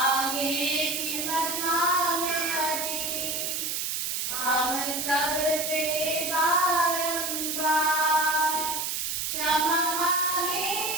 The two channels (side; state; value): right; noise; hiss, 1 dB below the sound